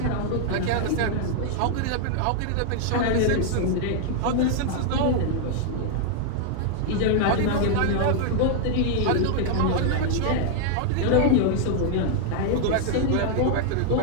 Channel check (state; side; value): different; both; correlation 0.00